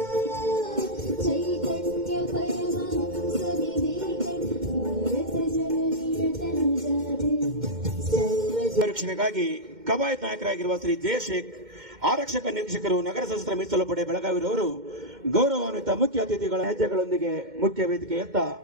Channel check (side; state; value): left; late; 2.1 ms